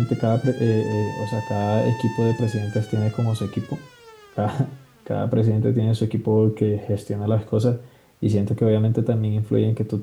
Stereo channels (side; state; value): both; identical; correlation 1.00